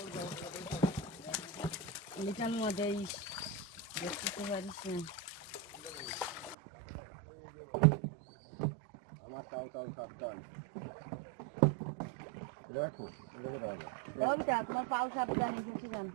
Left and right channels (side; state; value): left; drops out; at 6.6 s